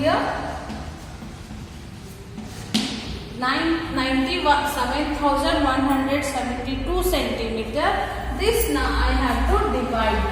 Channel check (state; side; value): identical; both; correlation 1.00